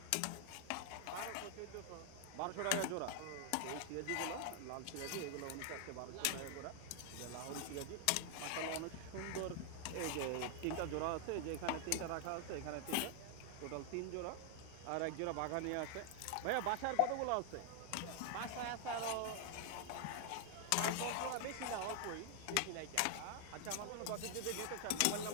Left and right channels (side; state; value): both; different; correlation 0.00